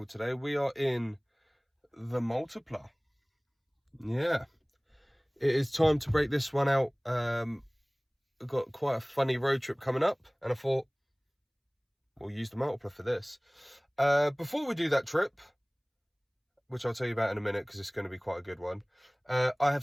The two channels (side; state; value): both; identical; correlation 1.00